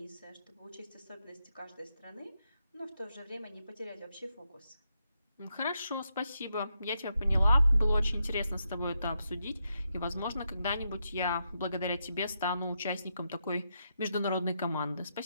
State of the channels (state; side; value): inverted; both; correlation -0.83